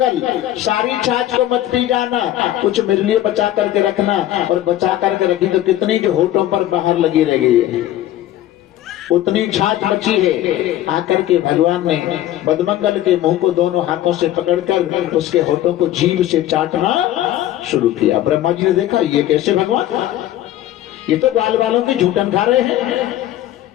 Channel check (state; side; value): quieter; right; 13.3 dB